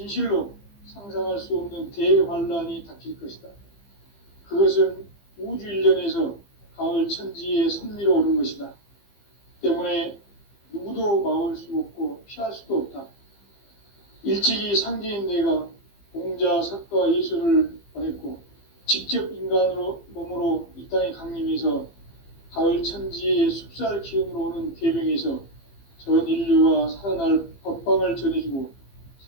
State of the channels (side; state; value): right; late; 15 ms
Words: 상상할 수 없는 대환란이 닥칠 것이다. 그것은 우주 일련에서 가을 천지의 섭리로 오는 것이다. 때문에 누구도 막을 수 없고 피할 수도 없다. 일찍이 상제인 내가 공자, 석가, 예수를 보냈고 직접 인간으로 몸으로 이 땅에 강림해서 가을 천지의 숲살 기운으로 오는 계병에서 전 인류가 살아날 법방을 전해주고